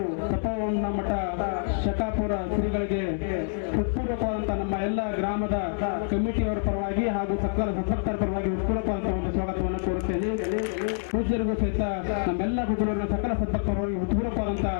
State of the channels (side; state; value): right; silent; digital silence